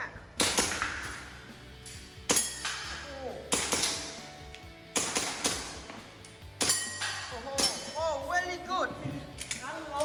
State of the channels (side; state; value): both; identical; correlation 1.00